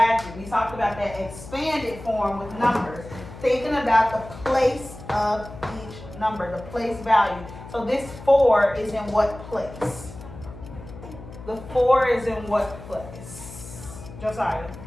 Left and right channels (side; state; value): left; noise; hum, 14 dB below the sound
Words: We talked about that expanded form with numbers, thinking about the place of each number, the place value. So this 4 is in what place? The 4 is in what place? Josiah.